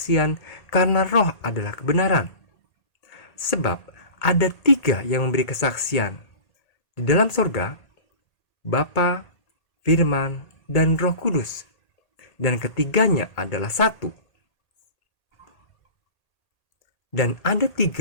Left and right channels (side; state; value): right; late; 1.8 ms